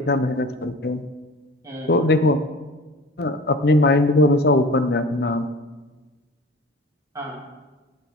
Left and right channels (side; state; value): both; normal; correlation 0.41